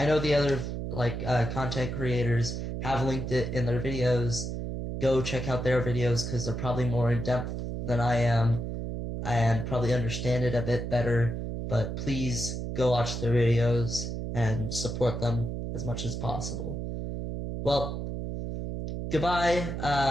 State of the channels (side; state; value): right; noise; hum, 4 dB below the sound